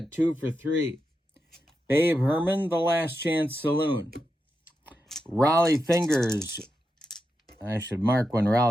2 for 3. Babe Herman, the last chance saloon. Raleigh Fingers. I should mark when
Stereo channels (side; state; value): both; normal; correlation 0.88